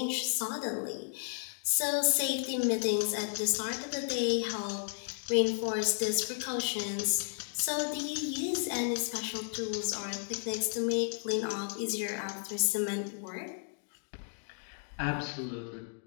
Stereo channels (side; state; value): right; silent; digital silence